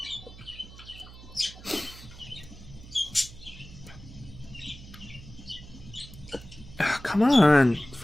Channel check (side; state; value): right; noise; hum, 17 dB below the sound